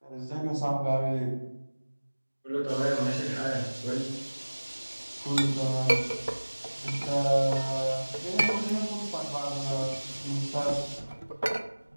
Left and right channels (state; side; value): inverted; both; correlation -1.00